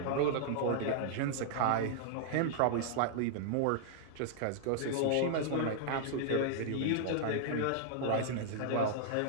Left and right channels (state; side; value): different; both; correlation -0.01